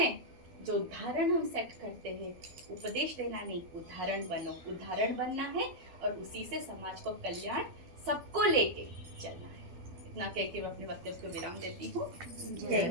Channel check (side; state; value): left; late; 12 ms